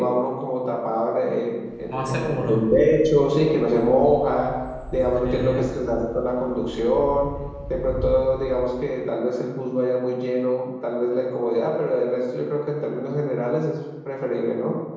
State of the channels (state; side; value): identical; both; correlation 1.00